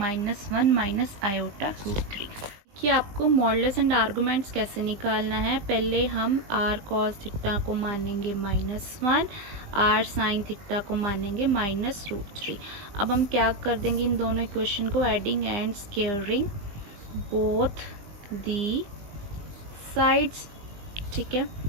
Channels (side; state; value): left; late; 20 ms